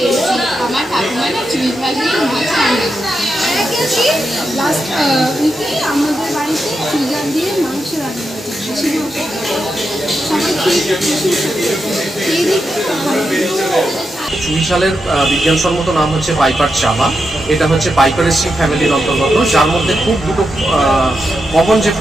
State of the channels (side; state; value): both; normal; correlation 0.86